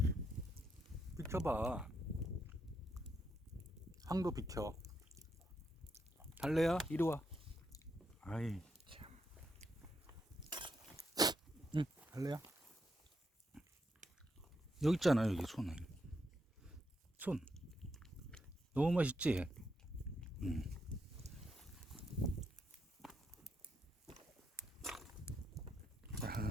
비켜봐. 황도 비켜. 달래야, 이리 와. 아이, 참. 달래야. 여기 있잖아, 여기 손은. 손. 너무 맛있지?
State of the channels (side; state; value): both; normal; correlation 0.80